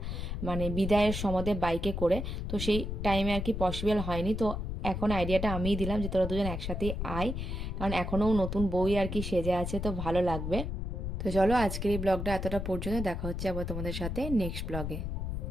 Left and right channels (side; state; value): left; noise; rumble, 4 dB below the sound